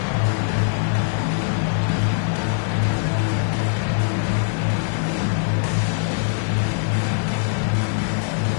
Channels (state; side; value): silent; right; 63 dB below the other